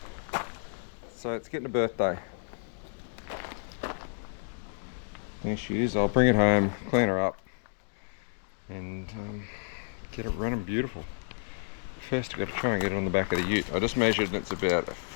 So it's getting a birthday. There she is. I'll bring it home, clean her up, and get it running beautiful. First I've got to try and get it on the back of the ute. I just measured and it's about a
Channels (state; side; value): silent; right; digital silence